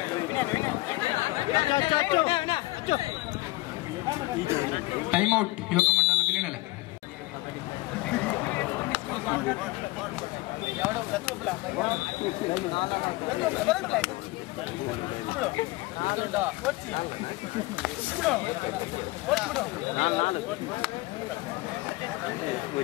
ಟೈಮ್ ಔಟ್ ಯುವಕ ಮಂಡಲ ಬಿಲಿನಲ್ಲಿ.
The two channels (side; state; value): right; quieter; 20.8 dB